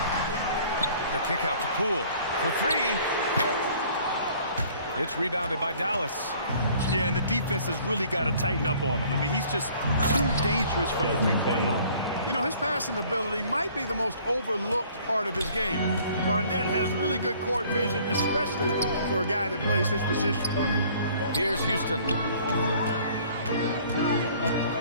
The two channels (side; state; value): both; inverted; correlation -0.55